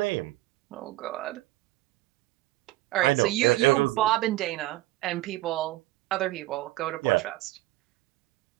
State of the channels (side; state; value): left; quieter; 17.9 dB